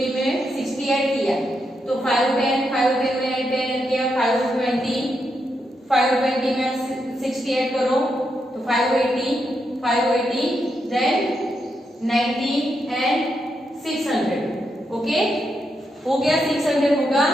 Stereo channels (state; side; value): normal; both; correlation 0.83